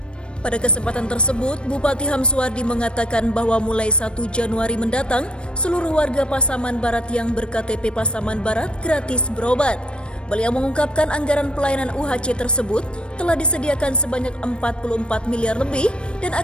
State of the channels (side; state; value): right; late; 0.057 ms